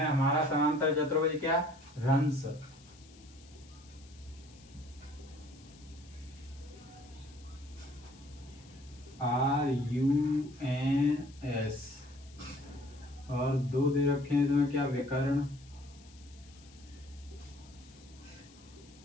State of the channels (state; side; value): noise; left; hiss, 25 dB below the sound